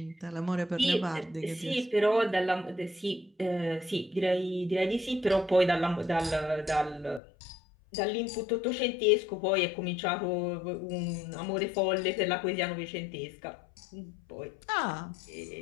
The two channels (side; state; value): right; drops out; at 7.2 s